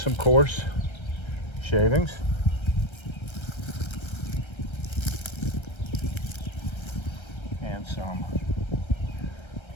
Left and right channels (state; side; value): late; right; 1.3 ms